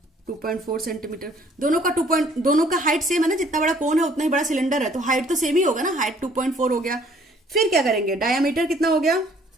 2.4 सेंटीमीटर। दोनों का हाइट सेम है ना, जितना बड़ा कोन है उतना ही बड़ा सिलेंडर है, तो हाइट तो सेम ही होगा ना, हाइट 2.4 हो गया। फिर क्या करेंगे, डायमीटर कितना हो गया,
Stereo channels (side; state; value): both; normal; correlation 0.59